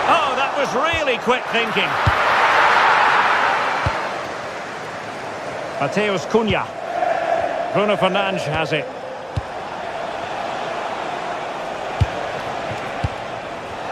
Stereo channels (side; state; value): both; identical; correlation 1.00